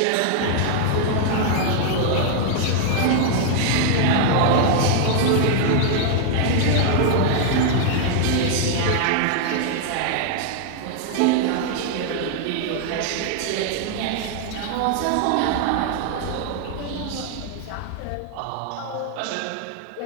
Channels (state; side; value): different; both; correlation 0.00